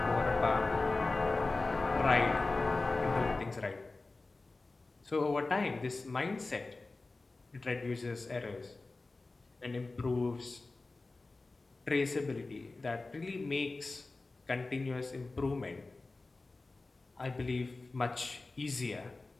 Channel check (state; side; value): quieter; right; 3.4 dB